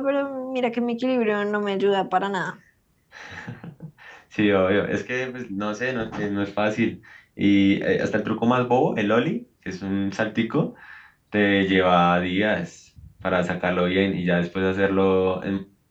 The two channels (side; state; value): both; identical; correlation 1.00